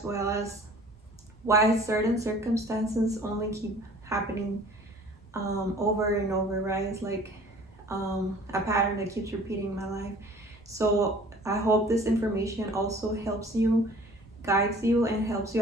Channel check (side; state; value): both; normal; correlation 0.49